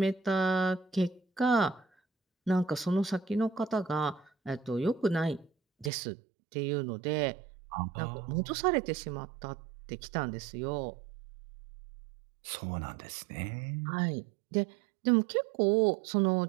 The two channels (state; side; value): drops out; left; at 5.9 s